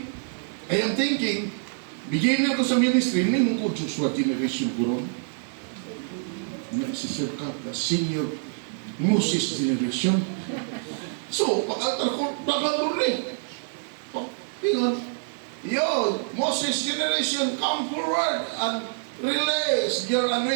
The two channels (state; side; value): silent; left; 61 dB below the other